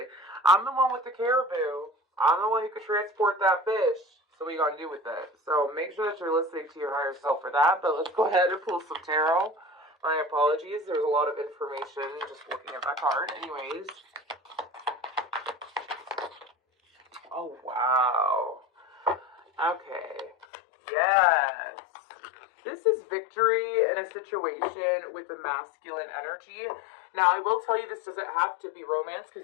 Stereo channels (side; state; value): right; drops out; at 20.5 s